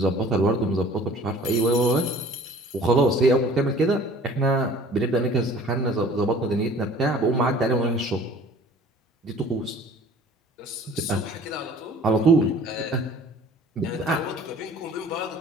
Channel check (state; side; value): normal; both; correlation 0.48